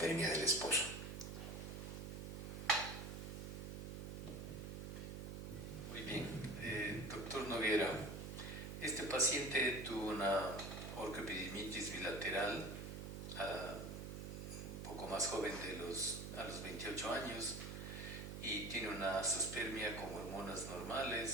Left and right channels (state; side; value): noise; right; hum, 6 dB below the sound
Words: del esposo. Muy bien, doctor Noguera, este paciente tuvo una orquiepididimitis bilateral un poco más joven a los 28 años y tiene una azospermia con hormonas